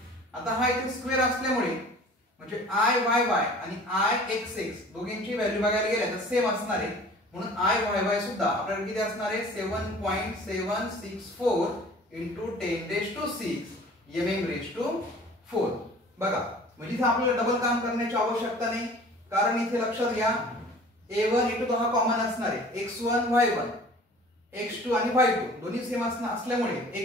आता हा इथे स्क्वेअर असल्यामुळे म्हणजे Iyy आणि Ixx दोघांची व्हॅल्यू बघायला गेल्या तर सेम असणार आहे, म्हणून Iyy सुद्धा आपल्याला किती असणार आहे 7.764 into 10 raised to 6 mm raised to 4. बघा म्हणजे इथे आपल्याला डबल काम करण्याची आवश्यकता नाही, कारण इथे लक्षात घ्या a1 a2 हा कॉमन असणार आहे, x1 y1 x2 आणि y2 दोन्ही सेम असल्यामुळे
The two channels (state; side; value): normal; both; correlation 0.47